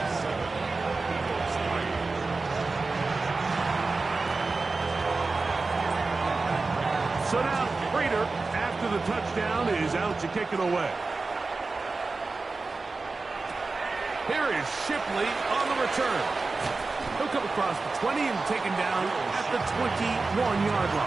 So now, Prater, after the touchdown, is out to kick it away. Here is Shipley on the return. He'll come across the 20 and taken down at the 21-yard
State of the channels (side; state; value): left; quieter; 3.8 dB